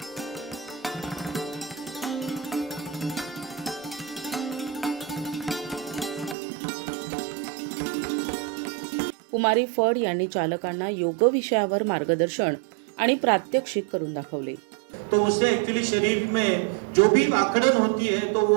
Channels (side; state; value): left; drops out; at 6.4 s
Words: कुमारी फड यांनी चालकांना योग विषयावर मार्गदर्शन आणि प्रात्यक्षिक करून दाखवले. तो उससे एक्चुअली शरीर में जो भी आकड़न होती है तो